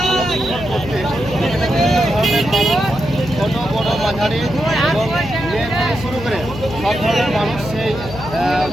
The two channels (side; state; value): left; noise; hum, 11 dB below the sound